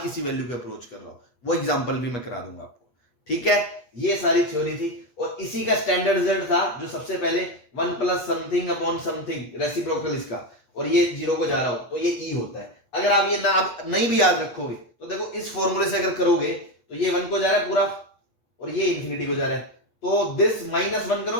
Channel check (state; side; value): late; right; 8.4 ms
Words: किसी वैल्यू को अप्रोच कर रहा हो, वो एग्जांपल भी मैं करा दूंगा आपको, ठीक है। ये सारी थ्योरी थी और इसी का स्टैंडर्ड रिजल्ट था जो सबसे पहले 1 plus something upon something reciprocal इसका, और ये 0 को जा रहा हो तो ये ई होता है। अगर आप ये ना नहीं भी याद रखोगे तो देखो इस फॉर्मूले से अगर करोगे तो ये 1 को जा रहा है पूरा और ये इंफिनिटी को जा रहा है, तो दिस माइनस 1